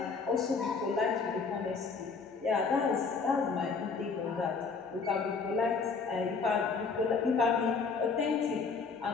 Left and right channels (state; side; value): quieter; right; 4.9 dB